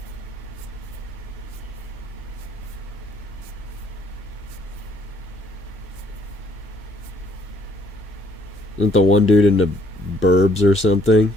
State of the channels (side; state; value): both; normal; correlation 0.65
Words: Isn't the one dude into Burbs or something?